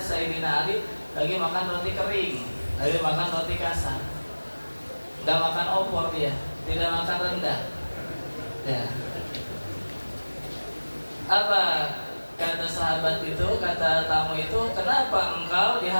Ali lagi makan roti kering, lagi makan roti kasar, nggak makan opor dia, tidak makan rendang. Ya. Apa kata sahabat itu, kata tamu itu, kenapa engkau di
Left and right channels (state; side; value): inverted; both; correlation -1.00